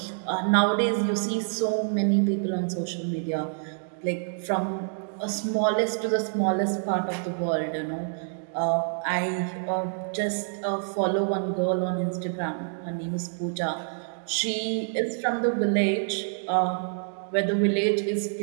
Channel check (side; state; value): left; silent; digital silence